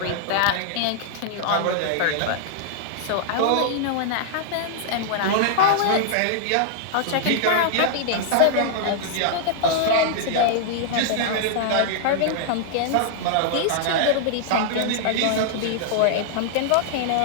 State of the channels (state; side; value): different; both; correlation -0.01